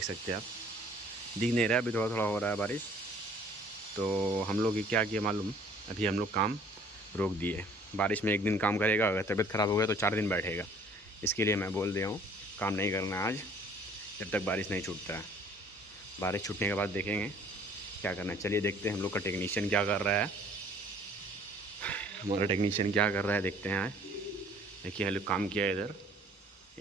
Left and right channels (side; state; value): both; normal; correlation 0.55